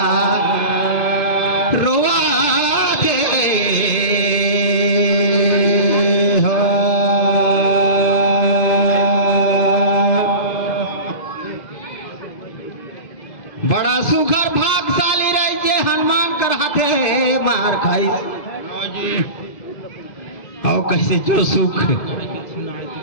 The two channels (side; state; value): right; late; 2.0 ms